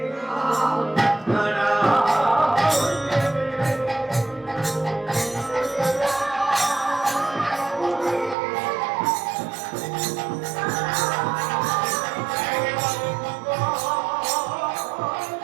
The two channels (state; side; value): drops out; left; at 8.3 s